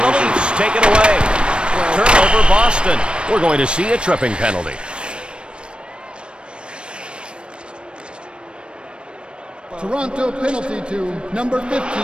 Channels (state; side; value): late; left; 0.056 ms